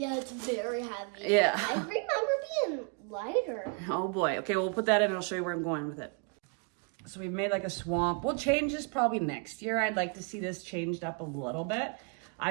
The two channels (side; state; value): left; quieter; 36.4 dB